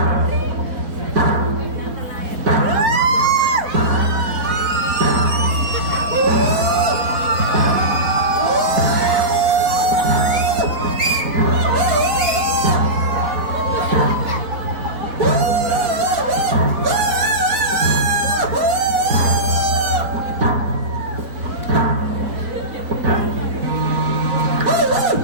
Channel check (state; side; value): late; left; 4.1 ms